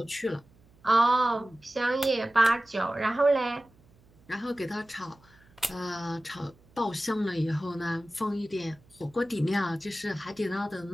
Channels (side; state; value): right; noise; hum, 29 dB below the sound